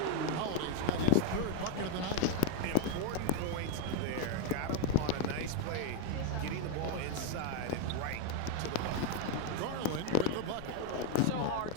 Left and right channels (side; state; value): both; different; correlation 0.01